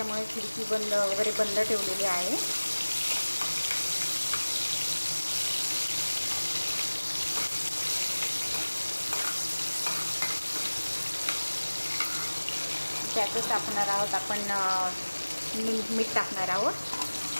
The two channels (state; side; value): inverted; both; correlation -1.00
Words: खिडकी वगैरे बंद ठेवलेली आहे. त्यातच टाकणार आहोत आपण मीठ टाकणार आहोत.